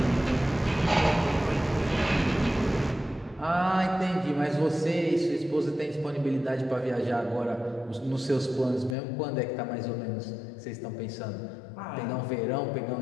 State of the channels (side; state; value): right; drops out; at 9.0 s